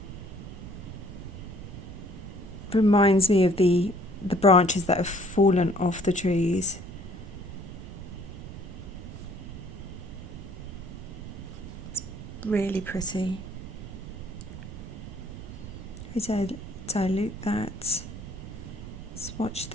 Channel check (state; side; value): noise; right; rumble, 11 dB below the sound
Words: reminds me of the branches that have fallen off the trees. It's really pretty. I dilute that, swatch